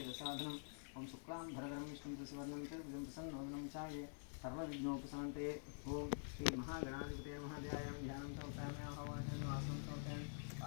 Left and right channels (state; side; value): silent; right; digital silence